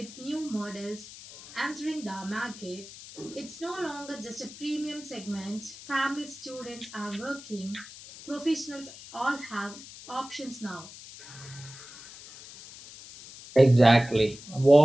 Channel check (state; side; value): noise; left; hiss, 16 dB below the sound